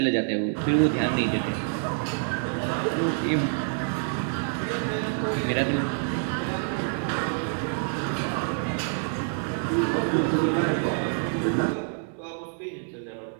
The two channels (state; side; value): silent; left; 60 dB below the other